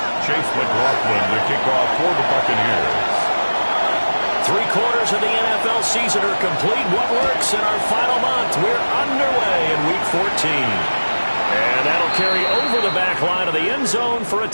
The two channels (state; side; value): inverted; both; correlation -1.00